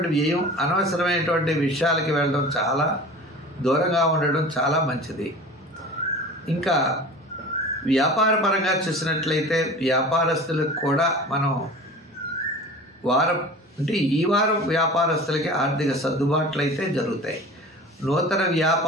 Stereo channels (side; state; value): both; normal; correlation 0.38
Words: వ్యయం, అనవసరమైనటువంటి విషయాలకి వెళ్ళడం, చాలా దూరంగా ఉండడం చాలా మంచిది. ఇంకా వ్యాపార పరంగా చూసినట్లయితే వ్యాపారస్తులకు కూడా మనం ఈ వారం వ్యాపారస్తులకి ఆర్థిక సర్దుబాట్లు అయితే జరుగుతాయి. నూతన